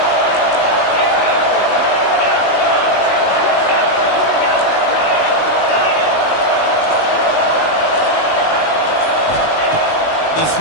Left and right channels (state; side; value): late; right; 19 ms